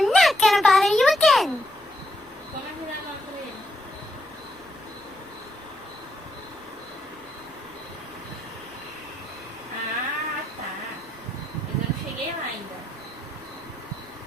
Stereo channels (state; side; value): normal; both; correlation 0.78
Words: not gonna bother you again. Ah, tá. Mas eu não cheguei lá ainda.